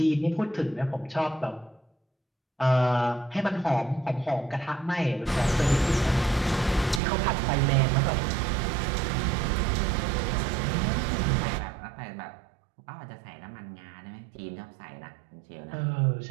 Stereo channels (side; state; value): left; drops out; at 7.0 s